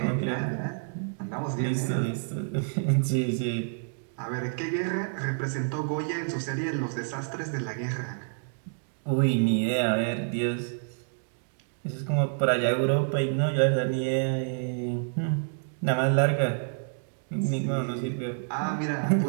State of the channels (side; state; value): left; silent; digital silence